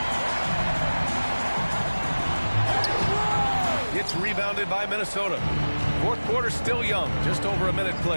It's rebounded by Minnesota. Fourth quarter still young, just over a minute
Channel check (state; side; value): inverted; both; correlation -1.00